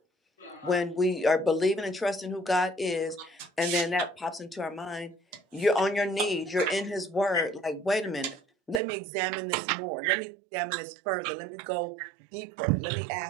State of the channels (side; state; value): left; drops out; at 8.8 s